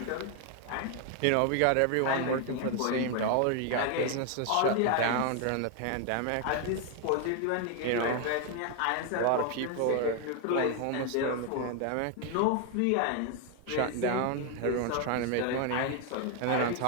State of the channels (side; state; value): both; different; correlation 0.01